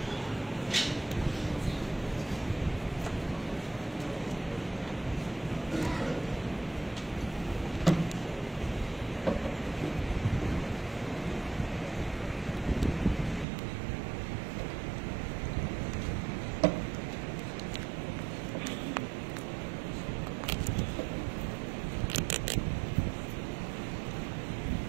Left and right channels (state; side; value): drops out; left; at 13.5 s